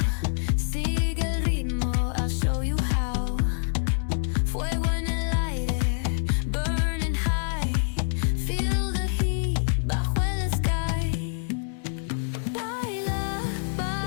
Sigue el ritmo, I'll show you how. Fuego en el aire, burning high. Feel the heat bajo el sky. Baila,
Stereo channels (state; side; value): silent; right; 61 dB below the other